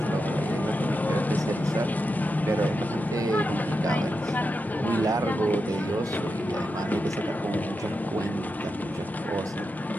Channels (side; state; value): both; normal; correlation 0.88